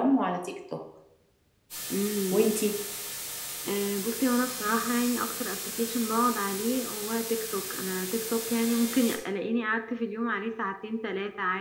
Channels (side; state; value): both; identical; correlation 1.00